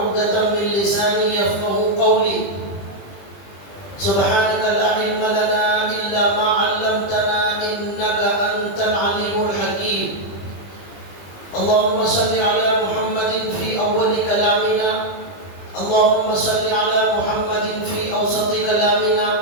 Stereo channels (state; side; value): late; right; 20 ms